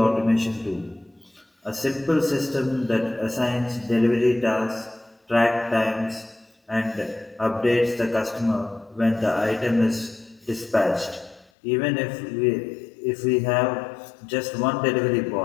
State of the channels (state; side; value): drops out; right; at 11.5 s